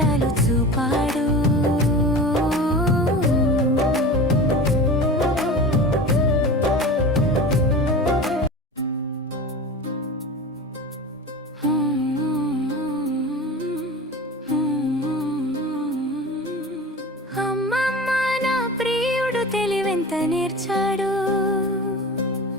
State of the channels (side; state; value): both; normal; correlation 0.33